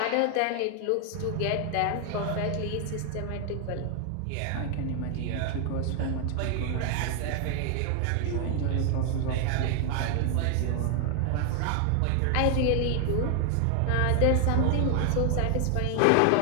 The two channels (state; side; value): different; both; correlation 0.00